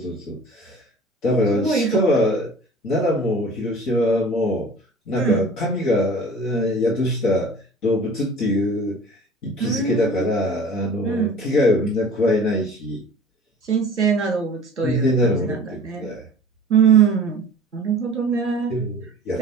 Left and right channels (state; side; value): normal; both; correlation 0.43